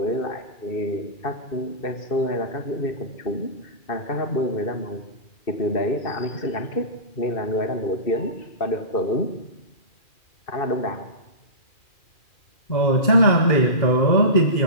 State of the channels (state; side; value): late; right; 2.4 ms